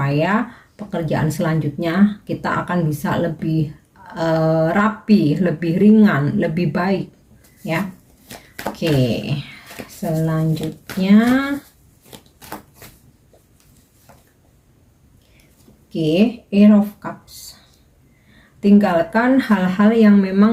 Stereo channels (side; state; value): both; identical; correlation 1.00